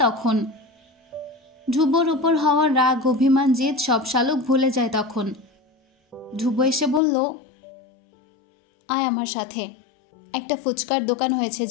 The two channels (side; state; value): right; drops out; at 7.0 s